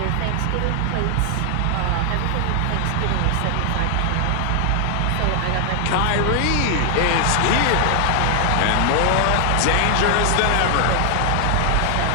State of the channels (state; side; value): different; both; correlation 0.00